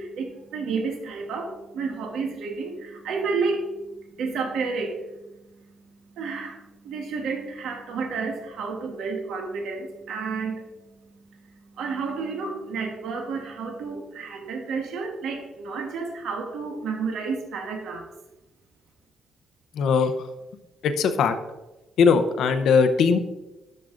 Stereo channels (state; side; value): normal; both; correlation 0.67